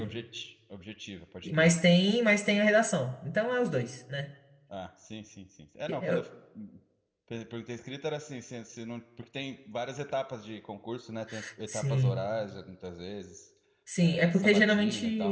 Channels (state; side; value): identical; both; correlation 1.00